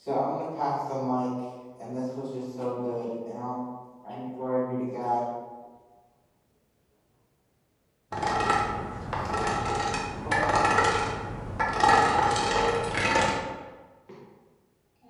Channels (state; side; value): identical; both; correlation 1.00